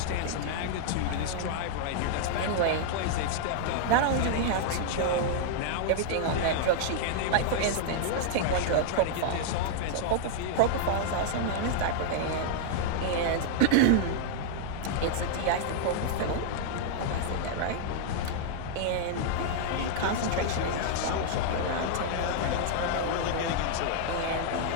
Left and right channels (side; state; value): both; different; correlation -0.01